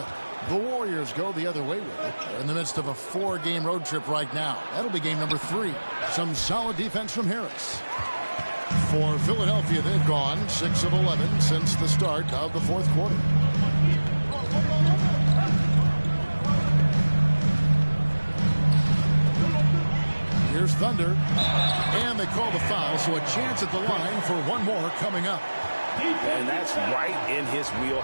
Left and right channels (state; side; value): inverted; both; correlation -1.00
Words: The Warriors go the other way with it. They're in the midst of a 4-game road trip right now. That'll be game number 3. Some solid defense from Harris. For Philadelphia, they've gone 6 of 11 since the start of the fourth quarter. Here's Thunder. And they call the foul, so a chance at the line for one more coming up. And that's right in his